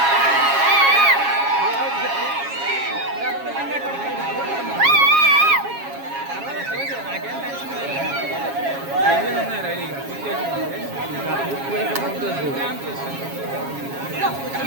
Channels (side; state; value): left; late; 7.3 ms